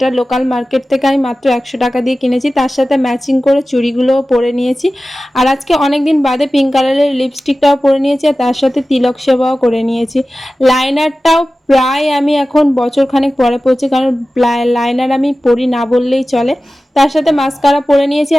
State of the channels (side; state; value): both; normal; correlation 0.96